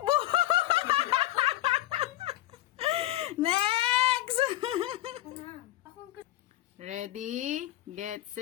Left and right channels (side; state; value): right; quieter; 15.0 dB